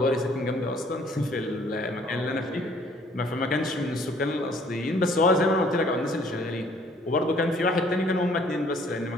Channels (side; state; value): both; normal; correlation 0.59